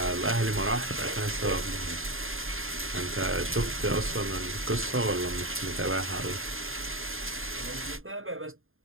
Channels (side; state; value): left; late; 0.60 ms